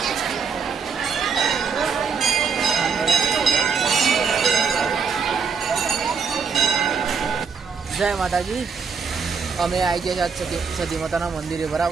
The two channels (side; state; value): left; quieter; 5.8 dB